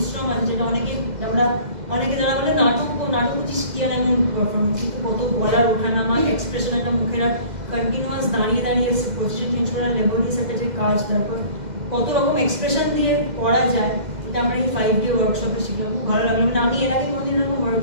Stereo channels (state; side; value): late; left; 2.0 ms